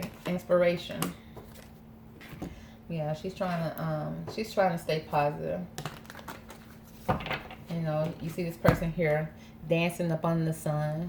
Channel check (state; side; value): identical; both; correlation 1.00